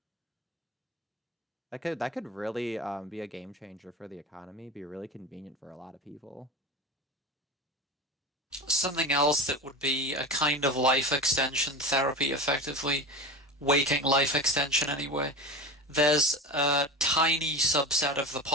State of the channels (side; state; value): both; normal; correlation 0.28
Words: That could really be a game changer for the economy, be really convenient for a lot of people. Something else that would be a kind of life extension therapy, effectively. Waking life extension, anyway. There's a tiny subset of the